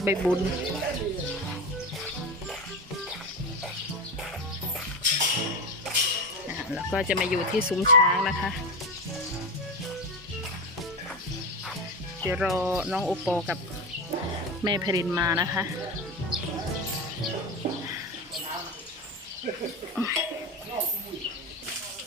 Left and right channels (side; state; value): both; normal; correlation 0.20